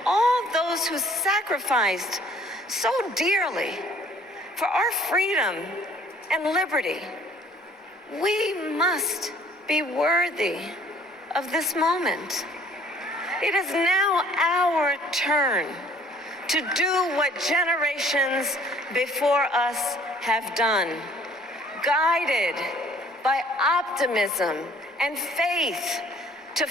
those who sacrificed so dearly for our freedom and liberty, we must be worthy of this moment. It is now our turn to do what generations before us have done, guided by optimism and faith, to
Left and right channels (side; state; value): both; normal; correlation 0.57